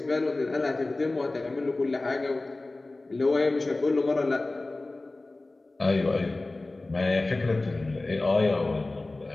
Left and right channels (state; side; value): quieter; right; 3.0 dB